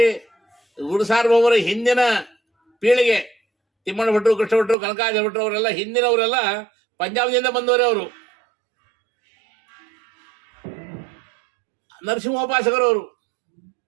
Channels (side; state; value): left; drops out; at 4.8 s